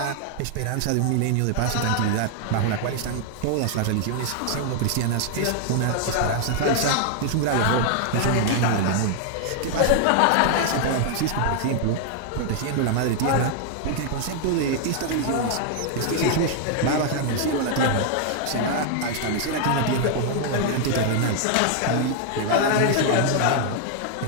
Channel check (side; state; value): both; different; correlation 0.00